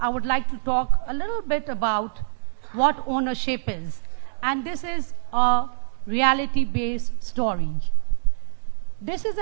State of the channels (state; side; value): silent; left; digital silence